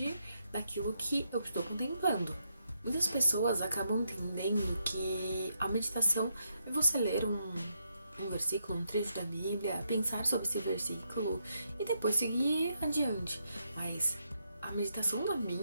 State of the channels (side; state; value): both; inverted; correlation -0.79